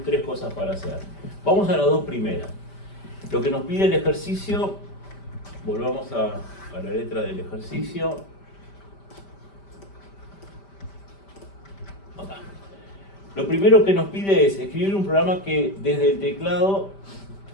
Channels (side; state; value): right; late; 5.1 ms